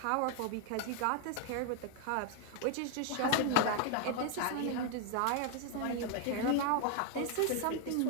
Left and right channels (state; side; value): different; both; correlation 0.00